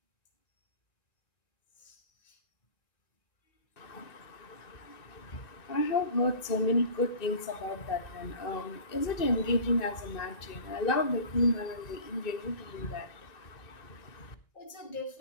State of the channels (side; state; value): right; late; 1.9 ms